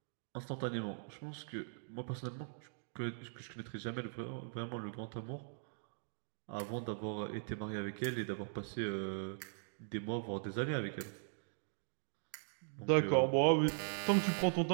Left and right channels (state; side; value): silent; left; digital silence